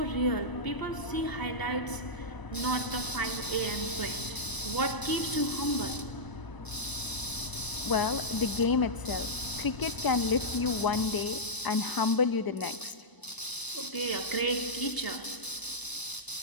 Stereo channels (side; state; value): right; late; 1.0 ms